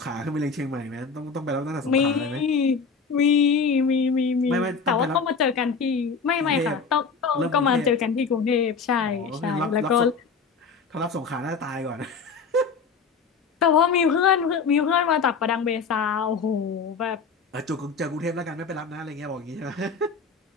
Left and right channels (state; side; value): quieter; right; 5.1 dB